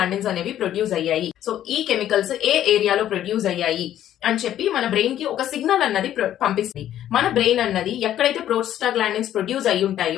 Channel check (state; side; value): quieter; right; 11.7 dB